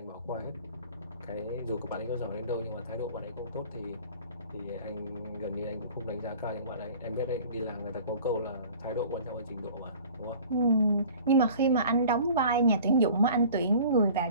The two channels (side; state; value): both; inverted; correlation -0.46